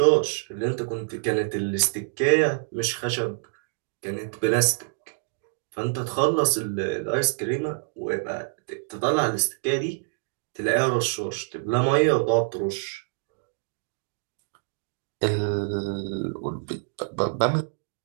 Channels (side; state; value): left; silent; digital silence